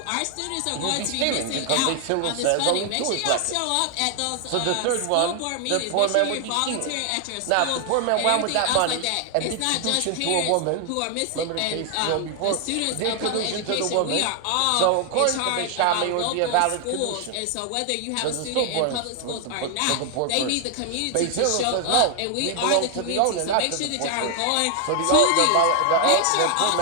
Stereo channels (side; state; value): both; different; correlation 0.00